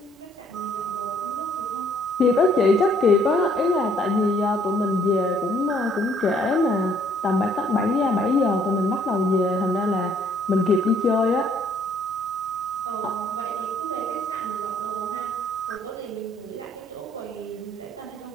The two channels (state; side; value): normal; both; correlation 0.64